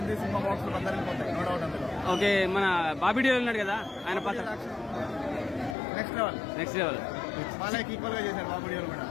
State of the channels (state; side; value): drops out; right; at 5.8 s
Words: సినిమా బాక్స్ లో అందరికి పోతాయి, నో డౌట్ అందులో. ఓకే, మన బాబీ డియోల్ ఉన్నాడు కదా, ఆయన పాత్ర నెక్స్ట్ లెవెల్. బాలయ్యకి ఈక్వల్ గా చేశారు బాబు డియోల్ కూడా.